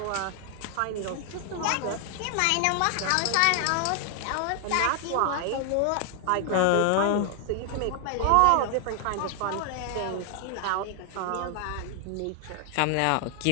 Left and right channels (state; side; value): different; both; correlation 0.00